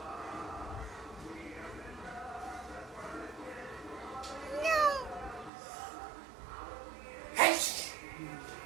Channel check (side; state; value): left; drops out; at 5.5 s